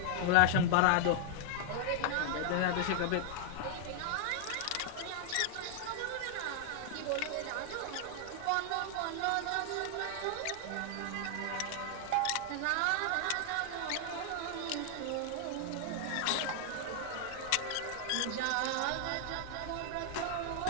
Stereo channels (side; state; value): both; different; correlation 0.00